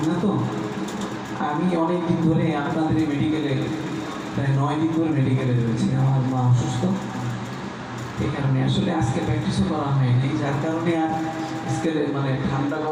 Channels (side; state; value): both; identical; correlation 1.00